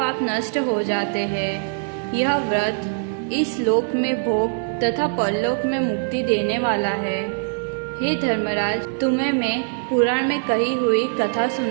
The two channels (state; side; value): silent; left; 64 dB below the other